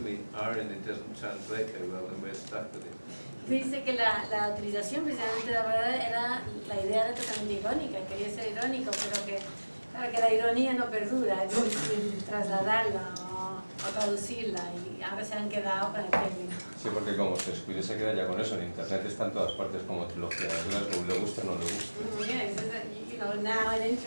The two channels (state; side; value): inverted; both; correlation -1.00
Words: irony doesn't translate very well, and we're stuck with it. Dice que la utilización precisamente de la verdad era, la idea era totalmente irónica, quería ser irónico, pero que, claro, que la ironía no perdura, es difícil trasladarla o traducirla, y ahora se han quedado con el término. Sí, porque como se descuide se queda ya con eso, en internet está en todas partes como trilogía de Glasgow, le gusta o no le gusta. Yes, you know, now on